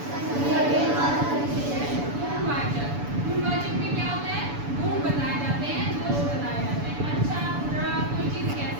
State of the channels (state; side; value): late; left; 7.0 ms